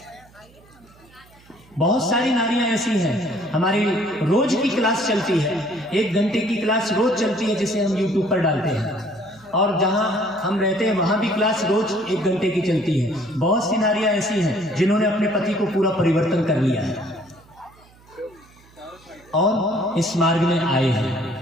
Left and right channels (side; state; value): right; noise; hum, 27 dB below the sound